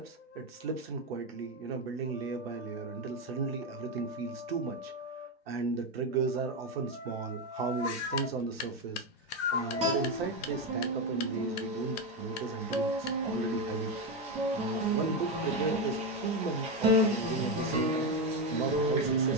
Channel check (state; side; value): normal; both; correlation 0.10